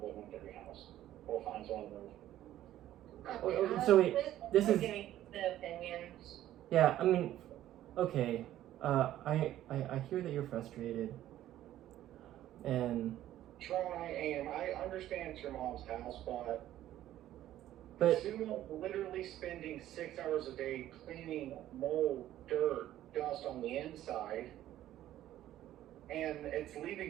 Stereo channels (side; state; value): left; quieter; 13.1 dB